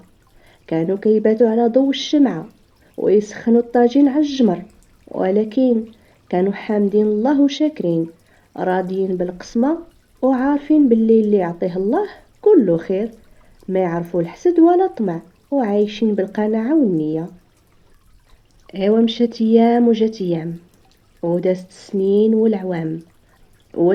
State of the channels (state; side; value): identical; both; correlation 1.00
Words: كانوا كيباتوا على ضوء الشمعة ويسخنوا الطاجين على الجمر، ولكن كانوا حامدين الله وشاكرين، راضيين بالقسمة، وعارفين باللي اللي يعطيه الله كله خير، ما يعرفوا الحسد ولا طمع، وعايشين بالقناعة والنية. ايوا مشات ايام وجات ايام، ودازت السنين والعوام،